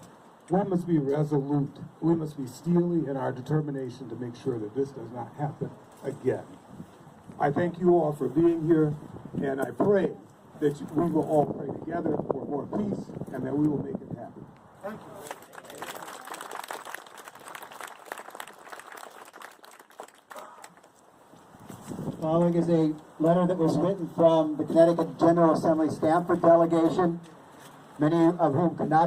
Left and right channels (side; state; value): both; identical; correlation 1.00